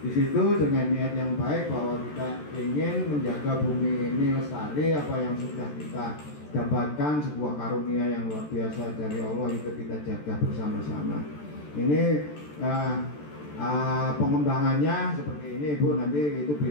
di situ dengan niat yang baik bahwa kita ingin menjaga bumi ini lestari. Apa yang sudah kita dapatkan sebuah karunia yang luar biasa dari Allah, itu kita jaga bersama-sama. Ini pengembangannya seperti ini Bu, nanti itu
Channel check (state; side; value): late; right; 14 ms